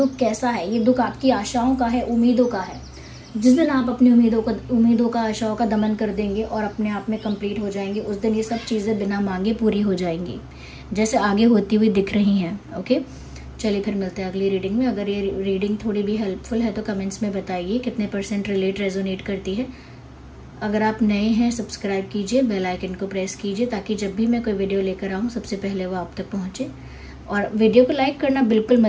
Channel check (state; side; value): identical; both; correlation 1.00